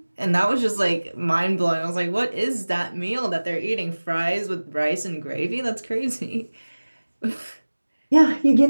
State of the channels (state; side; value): inverted; both; correlation -1.00